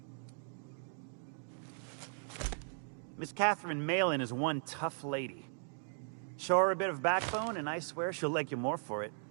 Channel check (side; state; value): left; silent; digital silence